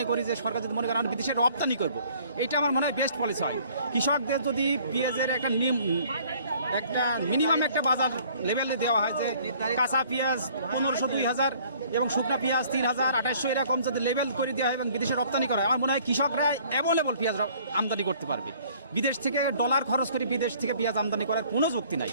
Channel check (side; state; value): both; inverted; correlation -0.57